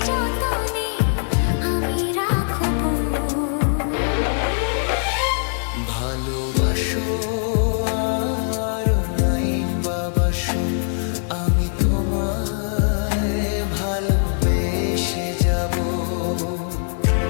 যতনে আমি রাখব। ভালোবাসো আর নাই বাবাসো, আমি তোমায় ভালোবেসে যাব।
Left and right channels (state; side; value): silent; right; 64 dB below the other